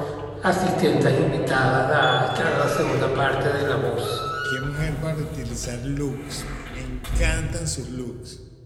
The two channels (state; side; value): identical; both; correlation 1.00